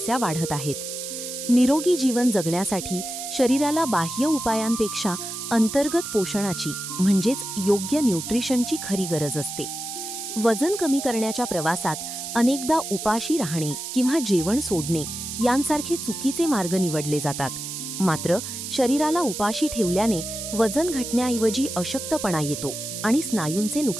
वाढत आहेत. निरोगी जीवन जगण्यासाठी शरीराला बाह्य उपायांपेक्षा अंतर्गत पोषणाची म्हणजेच योग्य न्यूट्रिशनची खरी गरज असते. वजन कमी करण्याच्या प्रवासात अनेकदा उपाशी राहणे किंवा जेवण सोडणे यांसारखे चुकीचे मार्ग निवडले जातात. मात्र शरीराला उपाशी ठेवल्याने वजन घटण्याऐवजी अशक्तपणा येतो आणि स्नायूंचे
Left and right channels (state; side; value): noise; right; hiss, 7 dB below the sound